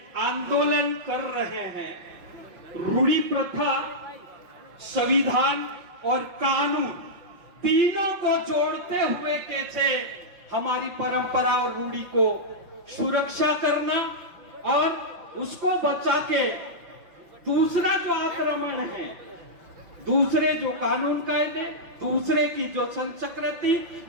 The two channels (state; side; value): late; left; 5.6 ms